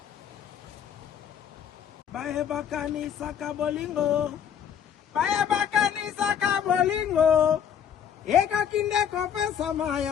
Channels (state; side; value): quieter; right; 8.5 dB